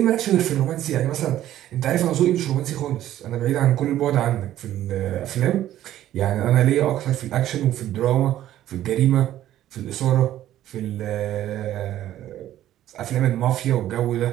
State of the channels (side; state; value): left; quieter; 12.8 dB